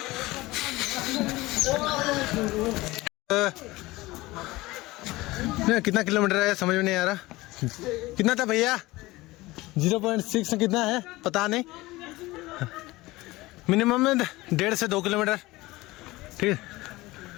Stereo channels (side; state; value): right; quieter; 19.9 dB